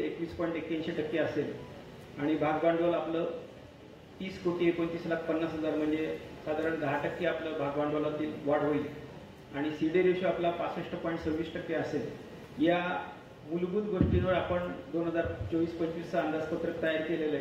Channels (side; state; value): both; identical; correlation 1.00